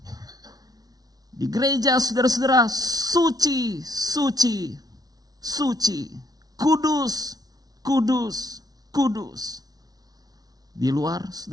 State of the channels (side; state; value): left; late; 0.19 ms